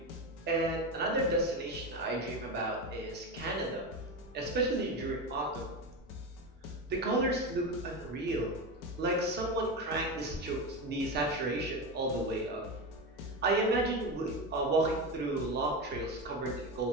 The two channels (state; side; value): normal; both; correlation 0.19